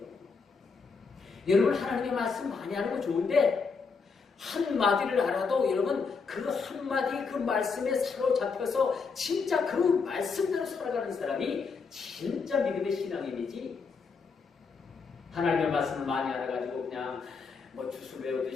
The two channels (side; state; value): right; quieter; 5.0 dB